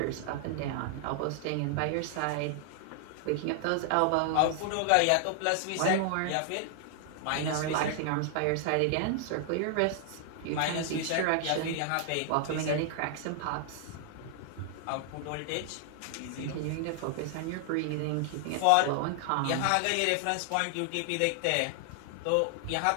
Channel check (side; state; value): both; different; correlation 0.00